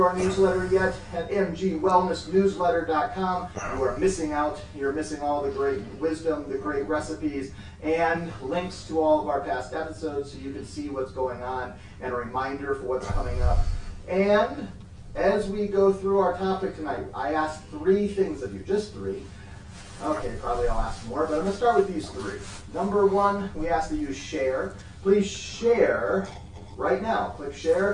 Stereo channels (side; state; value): both; identical; correlation 1.00